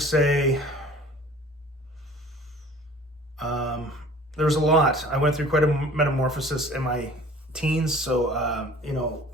say there was a lot. I went through quite a metamorphosis in my teens. So, I'm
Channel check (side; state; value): both; normal; correlation 0.47